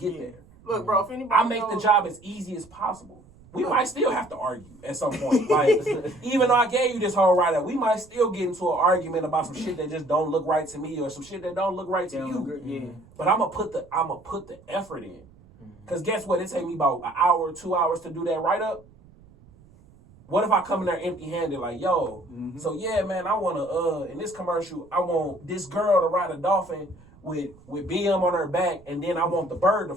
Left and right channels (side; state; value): right; noise; rumble, 25 dB below the sound